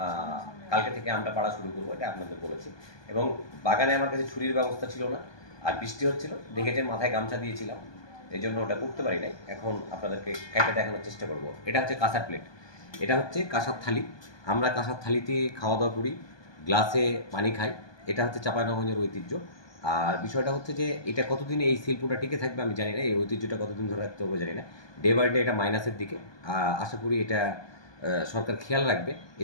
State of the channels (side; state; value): right; late; 1.2 ms